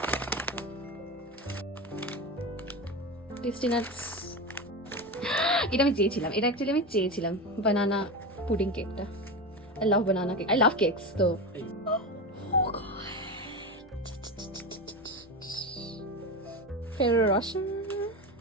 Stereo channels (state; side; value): normal; both; correlation 0.22